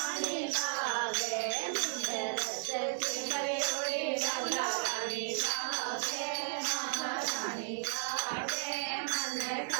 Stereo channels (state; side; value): silent; left; 55 dB below the other